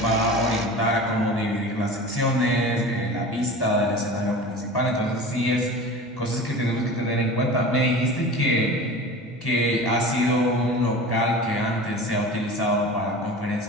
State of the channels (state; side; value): normal; both; correlation 0.35